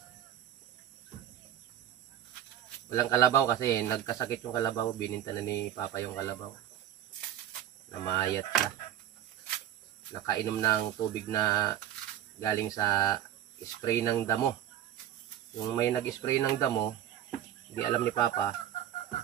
Walang kalabaw kasi nagkasakit yung kalabaw, bininta na ni Papa yung kalabaw. Namayat siya. Nakainom ng tubig na galing sa spray ng damo. Yung may nag-spray ng damo, hindi alam ni Papa,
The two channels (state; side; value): quieter; left; 11.2 dB